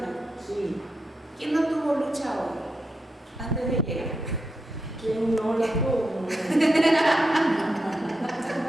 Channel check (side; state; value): both; normal; correlation 0.86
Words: Sí. ¿Quién no tuvo lucha hoy antes de llegar? ¿Quién no la tuvo?